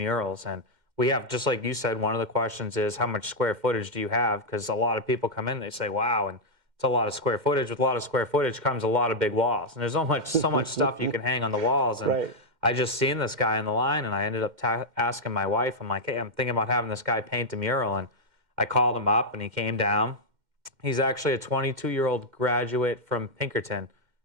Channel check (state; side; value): late; left; 2.1 ms